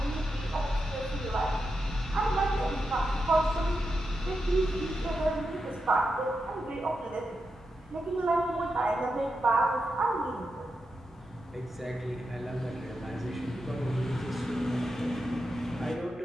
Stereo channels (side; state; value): both; normal; correlation 0.87